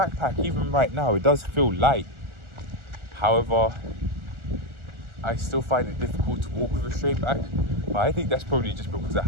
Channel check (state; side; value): late; left; 1.4 ms